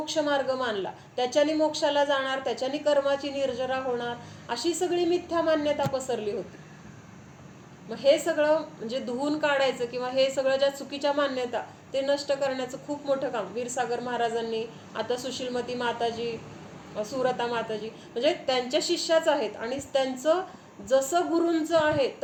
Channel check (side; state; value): both; identical; correlation 1.00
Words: मार्ग मानला, त्याच्यानी मोक्षाला जाणार, त्याच्यानी कर्माची निर्जरा होणार, अशी सगळी मिथ्या मान्यता पसरली होती. मग हे सगळं म्हणजे धुवून काढायचं, किंवा हे सगळं ज्या चुकीच्या मान्यता ते नष्ट करण्याचं खूप मोठं काम वीरसागर महाराजांनी, आता सुशीलमती माताजी, सुरता माताजी, म्हणजे त्यांच्या शिष्याच आहेत. आणि त्यांचं जसं गुरूंचं आहे